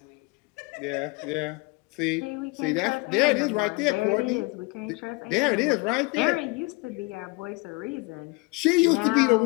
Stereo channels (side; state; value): right; quieter; 25.8 dB